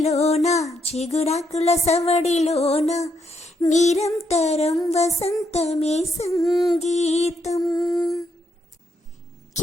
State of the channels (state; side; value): normal; both; correlation 0.77